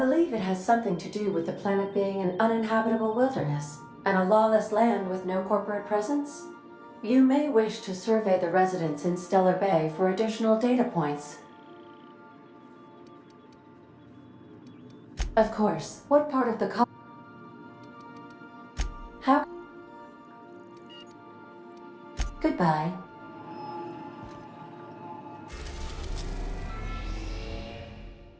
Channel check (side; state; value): both; identical; correlation 1.00